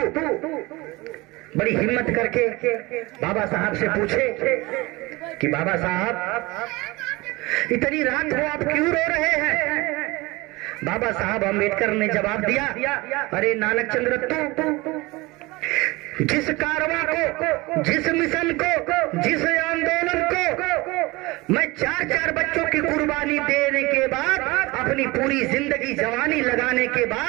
बड़ी हिम्मत करके बाबा साहब से पूछे कि बाबा साहब इतनी रात को आप क्यों रो रहे हैं। बाबा साहब अम्बेडकर ने जवाब दिया, अरे नानक चंद्र रत्तू, जिस कारवां को, जिस मिशन को, जिस आंदोलन को मैं 4-4 बच्चों की कुर्बानी देने के बाद, अपनी पूरी जिंदगी जवानी लगाने के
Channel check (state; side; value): quieter; left; 22.5 dB